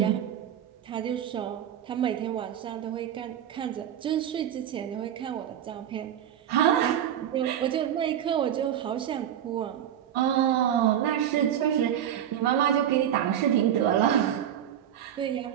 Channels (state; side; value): quieter; left; 10.2 dB